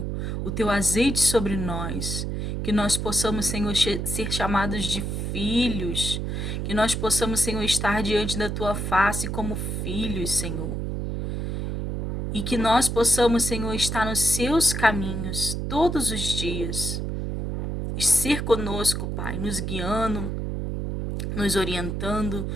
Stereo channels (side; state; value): right; noise; hum, 2 dB below the sound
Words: o teu azeite sobre nós, que nós possamos, Senhor, ser chamados de filhos, que nós possamos, Senhor, estar diante da tua face como filhos, Senhor. E que nós possamos, Senhor, estar nos seus caminhos todos os dias. Ser conosco, Pai, nos guiando, nos orientando,